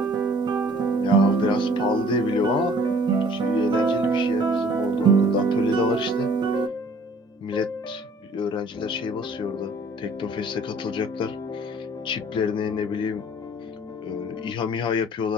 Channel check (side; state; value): both; normal; correlation 0.54